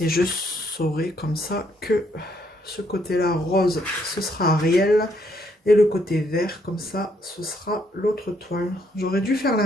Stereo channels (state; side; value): normal; both; correlation 0.71